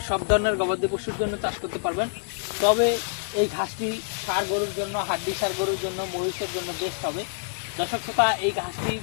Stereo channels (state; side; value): silent; right; digital silence